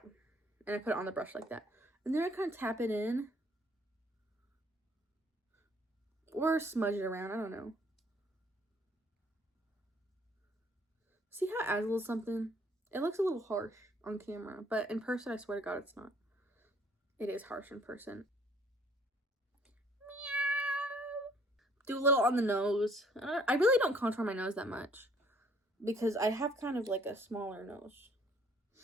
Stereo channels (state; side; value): normal; both; correlation 0.61